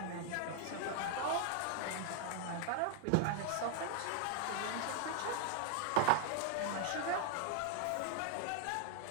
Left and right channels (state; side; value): different; both; correlation 0.00